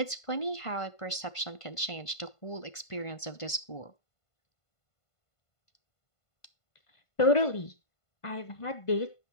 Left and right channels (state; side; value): late; right; 1.5 ms